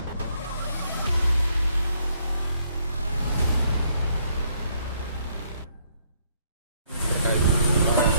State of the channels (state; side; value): inverted; both; correlation -0.69